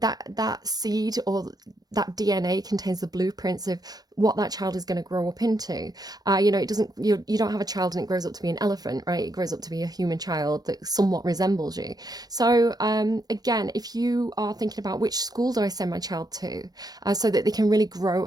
seed or that DNA contains the blueprints of what that child is going to grow up into. It doesn't, you don't have a child and it grows up to be an elephant, right? It grows up to be a human child that somewhat resembles you. So again, if you are thinking about which school do I send my child to, so that they can really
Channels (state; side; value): late; left; 0.19 ms